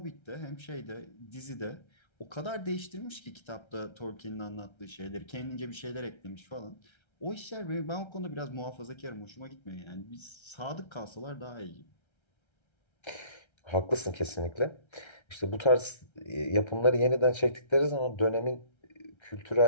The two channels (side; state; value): right; late; 1.3 ms